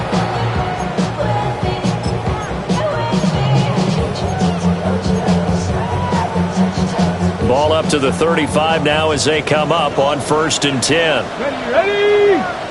Ball up to the 35 now as they come up on 1st and 10. Ready?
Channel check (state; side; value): identical; both; correlation 1.00